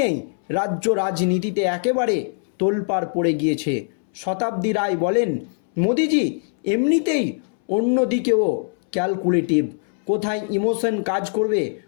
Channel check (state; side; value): silent; right; 64 dB below the other